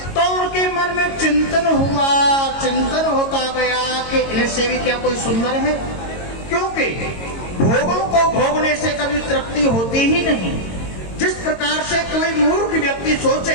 तो उनके मन में चिंतन होता गया कि इनसे भी क्या कोई सुंदर है, क्योंकि भोगों को भोगने से कभी तृप्ति होती ही नहीं। जिस प्रकार से कोई मूर्ख व्यक्ति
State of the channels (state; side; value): late; right; 22 ms